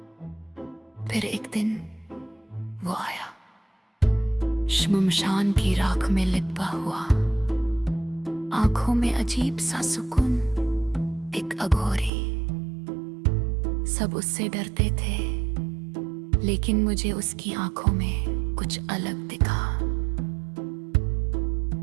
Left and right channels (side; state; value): left; drops out; at 12.1 s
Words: फिर एक दिन वो आया, श्मशान की राख में लिपटा हुआ, आंखों में अजीब सा सुकून, एक अघोरी। सब उससे डरते थे, लेकिन मुझे उसकी आंखों में कुछ अलग दिखा।